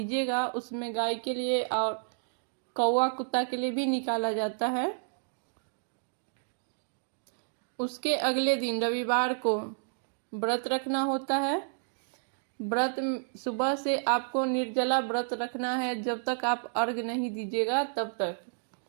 उसमें गाय के लिए और कौवा कुत्ता के लिए भी निकाला जाता है। उसके अगले दिन रविवार को व्रत रखना होता है। व्रत सुबह से आपको निर्जला व्रत रखना है, जब तक आप अर्घ नहीं दीजिएगा तब तक।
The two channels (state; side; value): silent; left; digital silence